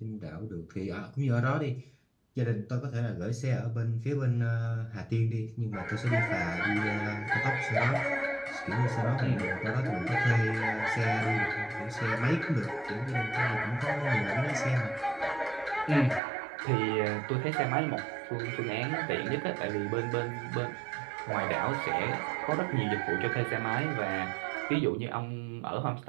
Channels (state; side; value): drops out; left; at 16.2 s